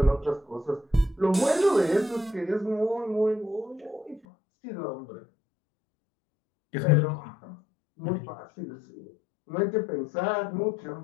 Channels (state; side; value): drops out; right; at 4.2 s